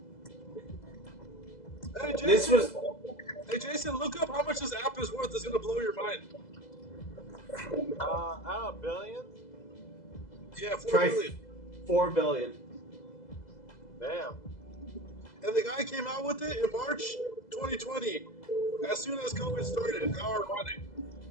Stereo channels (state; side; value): late; right; 2.0 ms